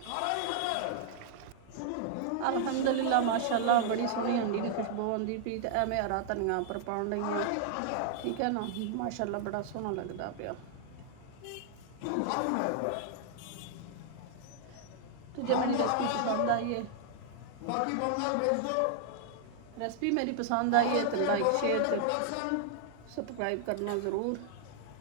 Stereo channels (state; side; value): different; both; correlation -0.01